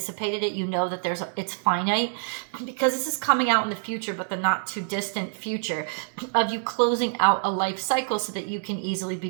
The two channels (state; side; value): silent; left; 61 dB below the other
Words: it. You know that it's finite, because this is coming out in the future, but the not too distant future of you closing out a life cycle so that you can easily